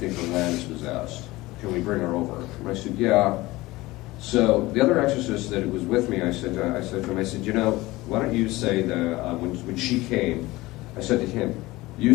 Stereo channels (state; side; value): quieter; right; 19.6 dB